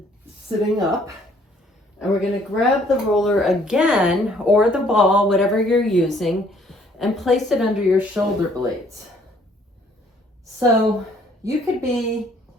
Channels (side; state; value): both; normal; correlation 0.62